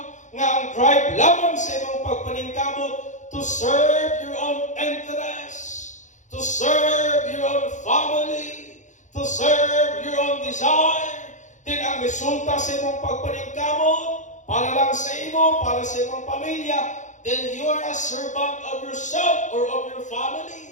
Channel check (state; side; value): late; right; 0.36 ms